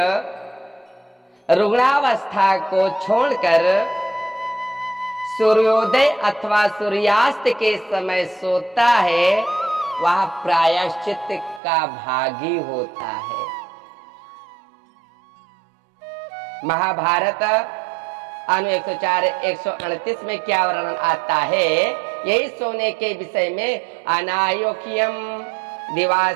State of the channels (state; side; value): drops out; left; at 11.6 s